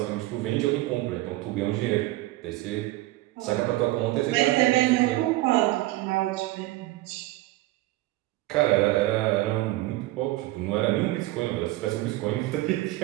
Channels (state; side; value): quieter; left; 18.0 dB